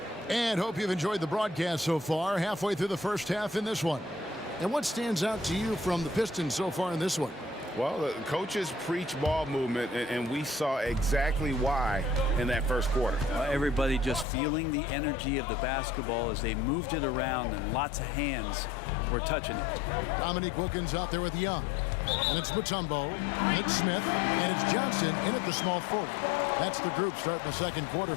And hope you've enjoyed the broadcast so far. Halfway through the first half in this one. And what stands out to you from the Pistons so far in this one? Well, the coaches preach ball movement, and we saw exactly why in that first quarter. Everybody just feeling the energy of the basketball as they moved it around, and lots of hands were touching it. Dominique Wilkins out there with Young. And it's Mutombo, and it's Smith, and it's Johnson in at the small forward. That's the group starting the second quarter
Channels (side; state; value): right; drops out; at 14.2 s